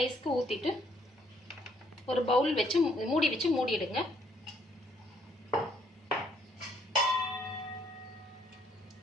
ஊற்றிட்டு ஒரு பவுல் வச்சு மூடி வச்சு மூடிடுங்க.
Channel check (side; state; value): both; normal; correlation 0.67